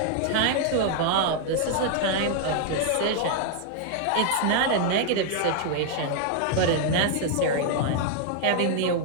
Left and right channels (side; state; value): both; different; correlation 0.00